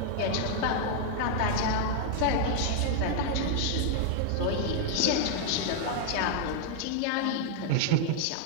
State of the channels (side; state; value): both; different; correlation 0.00